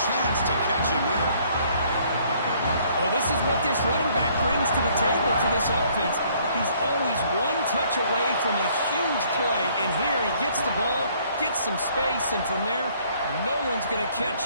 chance to catch him there. Well, this is what this running back brings to the table for this offense. He's always one touch away from a huge play. And here he gets the ball, gets some space, and from there, no one's going to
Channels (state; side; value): inverted; both; correlation -0.62